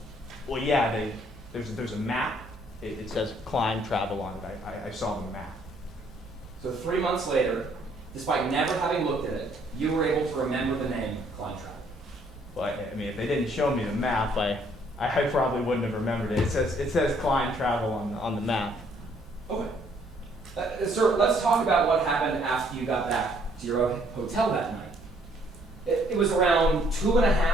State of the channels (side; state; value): both; normal; correlation 0.65